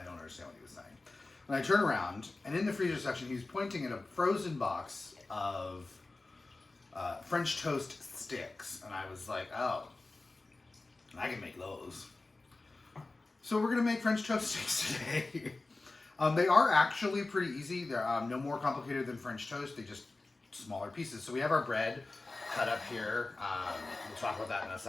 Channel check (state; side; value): quieter; right; 3.3 dB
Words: don't understand what he was saying. And I turn around, and in the freezer section, he's pointing at a frozen box of French toast sticks. And I was like, oh, I can make those. So we're going to make French toast sticks today. They are actually pretty easy. They're no more complicated than French toast. They just smaller pieces. So we have our bread cut up here. We'll talk about that in a